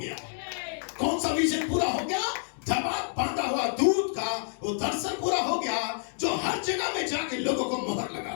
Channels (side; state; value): right; silent; digital silence